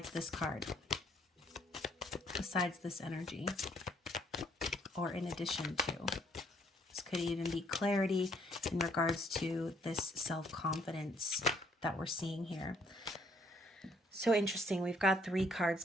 this card? Besides this energy? Or in addition to? This could even be clarity in regards to this self-confidence that we're seeing here. So interesting. We've got 3 cards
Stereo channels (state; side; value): normal; both; correlation 0.66